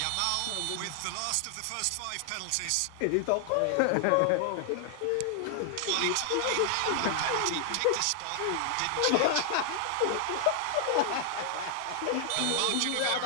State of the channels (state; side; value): different; both; correlation 0.00